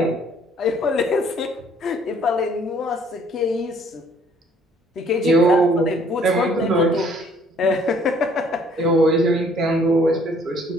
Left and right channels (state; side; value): normal; both; correlation 0.60